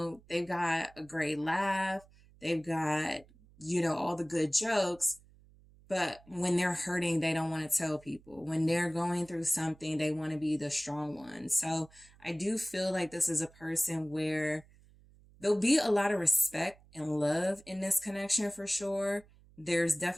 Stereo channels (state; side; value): noise; right; hum, 26 dB below the sound